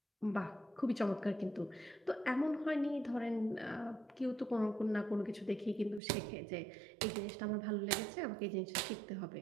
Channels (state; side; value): drops out; left; at 6.0 s